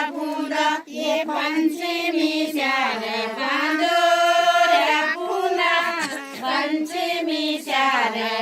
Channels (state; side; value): identical; both; correlation 1.00